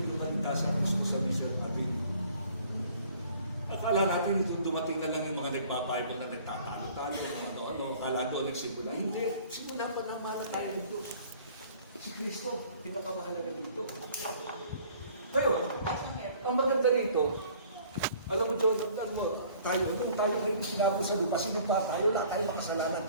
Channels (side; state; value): both; inverted; correlation -0.53